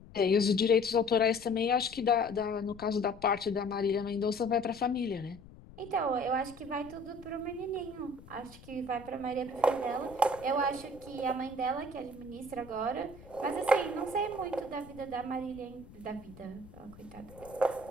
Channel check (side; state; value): left; noise; rumble, 20 dB below the sound